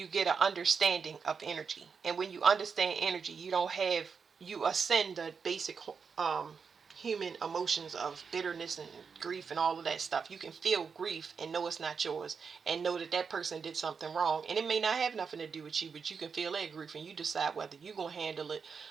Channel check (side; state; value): left; quieter; 5.8 dB